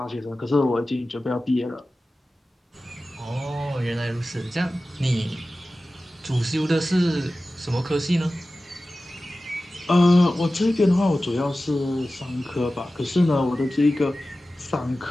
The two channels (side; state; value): both; normal; correlation 0.95